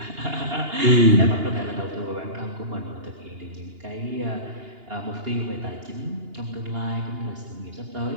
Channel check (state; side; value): late; left; 2.8 ms